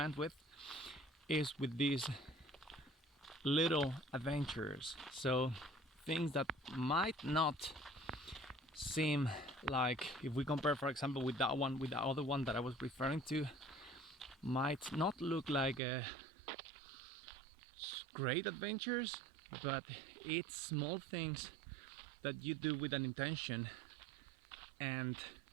with, is with these little adventures. So things that might not seem like, if we compare, for example, with that one, with the other one that I was referring to, might not look like great adventures, but it's small things that you do with an intention, and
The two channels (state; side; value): drops out; left; at 15.8 s